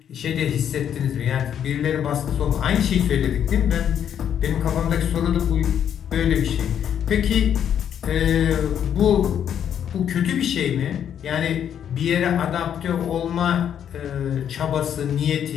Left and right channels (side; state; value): right; quieter; 9.2 dB